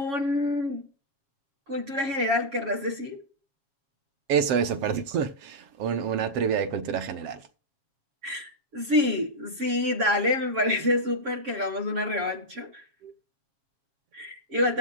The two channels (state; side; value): late; left; 7.6 ms